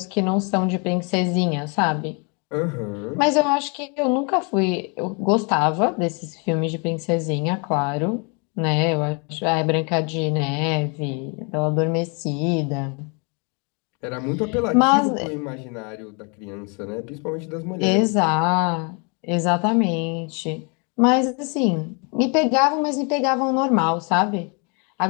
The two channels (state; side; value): quieter; right; 34.4 dB